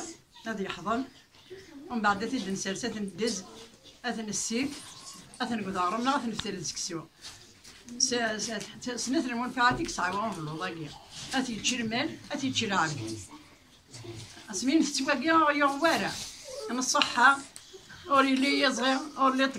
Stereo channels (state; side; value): identical; both; correlation 1.00